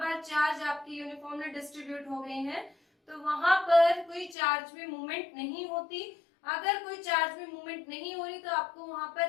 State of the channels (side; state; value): right; drops out; at 4.4 s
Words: चार्ज आपकी uniformly distribute हो गए हैं तो वहां पर कोई चार्ज में मूवमेंट नहीं होती. अगर कोई चार्ज में मूवमेंट नहीं हो रही तो आपको वहां